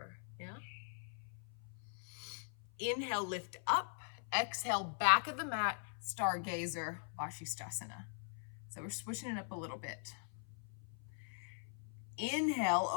yeah? Inhale, lift up. Exhale, back of the mat, stargazer, Vashisthasana. So we're switching it up a little bit. Inhale,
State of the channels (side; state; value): right; silent; 50 dB below the other